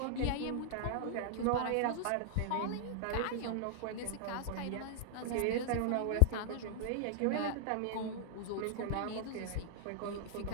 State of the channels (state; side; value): different; both; correlation -0.01